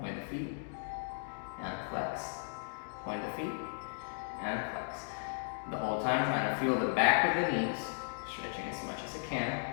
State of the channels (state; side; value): silent; right; digital silence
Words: the feet, and flex. Point the feet, and flex. The whole time trying to feel the back of the knees, stretching as much as I